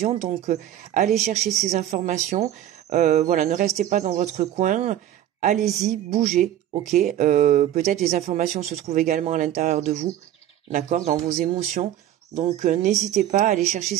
donc allez chercher ces informations. Voilà, ne restez pas dans votre coin. Allez-y, bougez, ok. Peut-être les informations se trouvent également à l'intérieur de vous, d'accord, dans vos émotions. Donc n'hésitez pas à aller chercher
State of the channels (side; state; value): left; quieter; 12.0 dB